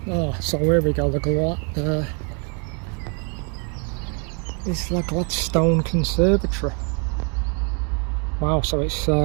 Oh, so here we go. It's like Gladstone Conservatory. Wow, so it's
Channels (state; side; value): quieter; left; 37.6 dB